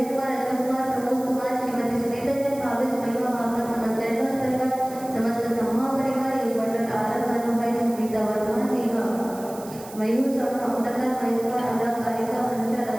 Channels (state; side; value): noise; right; hiss, 18 dB below the sound